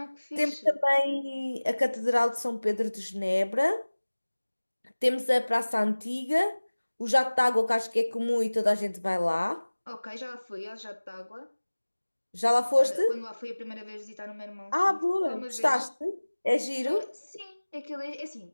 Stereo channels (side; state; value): both; inverted; correlation -1.00